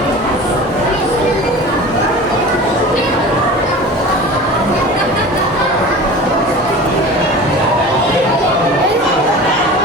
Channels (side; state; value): both; normal; correlation 0.36